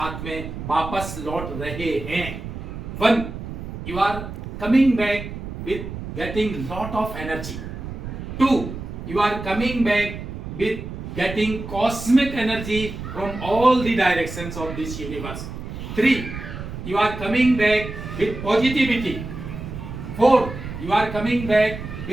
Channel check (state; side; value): noise; right; rumble, 9 dB below the sound